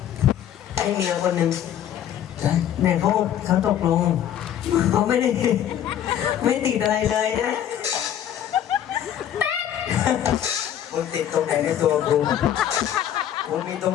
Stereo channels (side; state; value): right; quieter; 10.4 dB